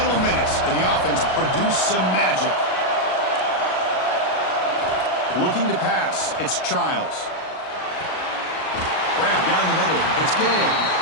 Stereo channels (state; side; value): late; right; 38 ms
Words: minutes, and the offense produced some magic. Looking to pass, it's Childs. Grab down the middle, it's Gay.